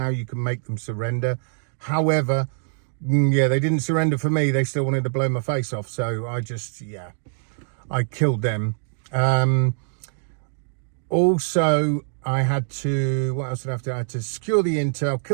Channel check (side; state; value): left; silent; digital silence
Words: you can make them surrender. However, yeah, they didn't surrender for me. They still wanted to blow my face off. So I killed them. Also, I had to, what else did I have to do? I had to secure the intel,